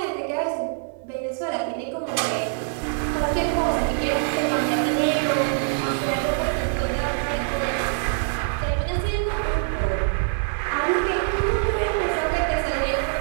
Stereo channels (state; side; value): silent; left; digital silence